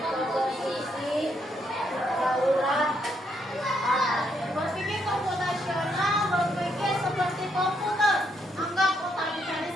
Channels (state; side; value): normal; both; correlation 0.75